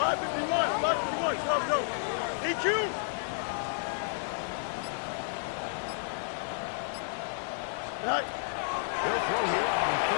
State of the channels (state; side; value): silent; right; digital silence